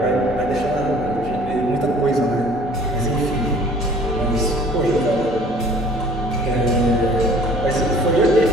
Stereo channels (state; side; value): normal; both; correlation 0.52